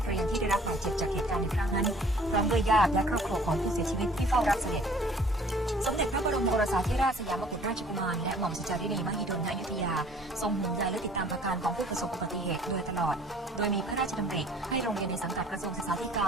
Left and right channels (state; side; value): normal; both; correlation 0.53